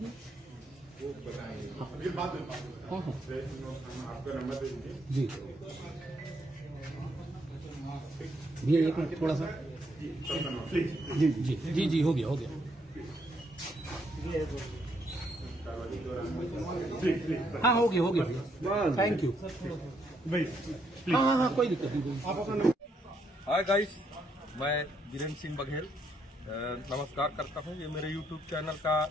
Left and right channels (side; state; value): both; normal; correlation 0.74